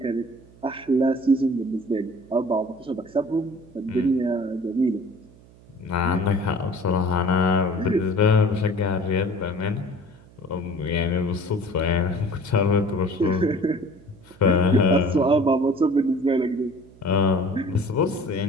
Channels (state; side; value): noise; right; hum, 25 dB below the sound